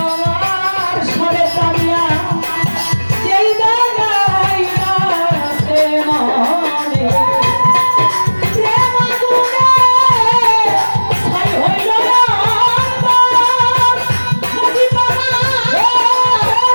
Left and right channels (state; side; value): inverted; both; correlation -1.00